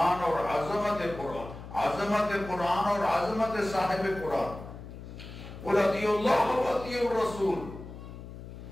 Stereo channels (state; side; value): noise; left; hum, 13 dB below the sound